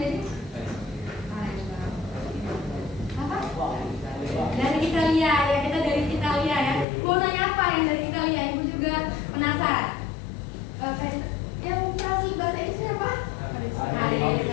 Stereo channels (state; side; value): drops out; right; at 6.9 s